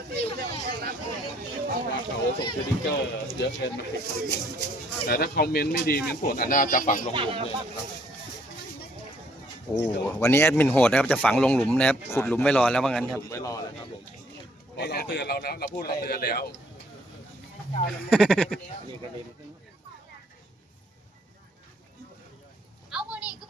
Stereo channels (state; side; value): normal; both; correlation 0.65